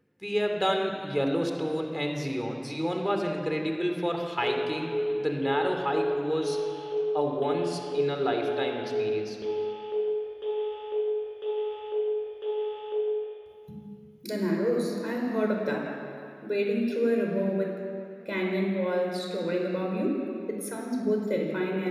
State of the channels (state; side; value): identical; both; correlation 1.00